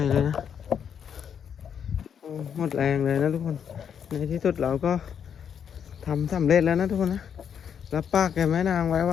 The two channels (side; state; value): right; quieter; 7.9 dB